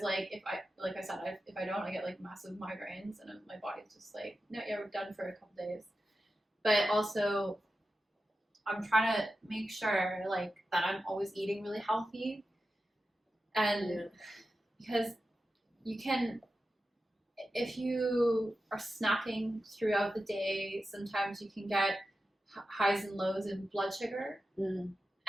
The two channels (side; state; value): both; normal; correlation 0.92